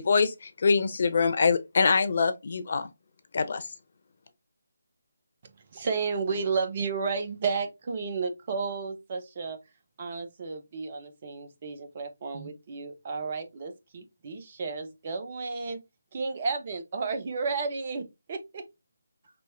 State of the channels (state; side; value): inverted; both; correlation -0.78